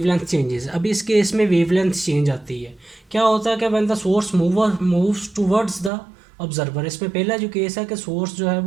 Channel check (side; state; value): left; drops out; at 5.9 s